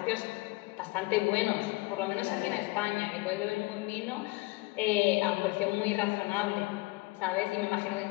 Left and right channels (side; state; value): right; quieter; 23.1 dB